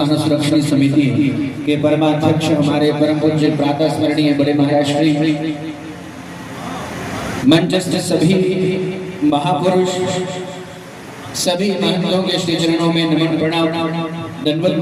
सुरक्षा समिति के परमाध्यक्ष हमारे परम पूज्य प्रातः स्मरणीय बड़े महाराज श्री, मंचस्थ सभी महापुरुष, सभी महंतों के श्री चरणों में नमन प्रणाम, दंडवत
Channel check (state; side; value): identical; both; correlation 1.00